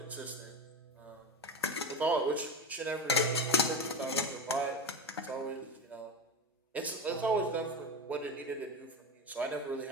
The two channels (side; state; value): both; normal; correlation 0.21